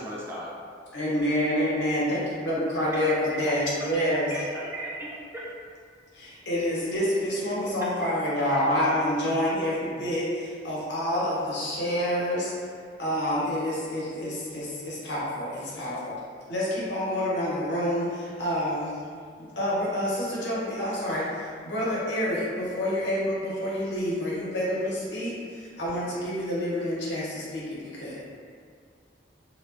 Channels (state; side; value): normal; both; correlation 0.26